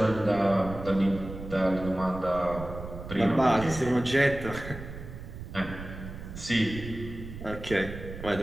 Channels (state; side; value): noise; right; rumble, 11 dB below the sound